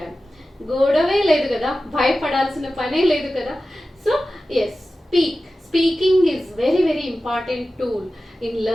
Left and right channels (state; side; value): normal; both; correlation 0.95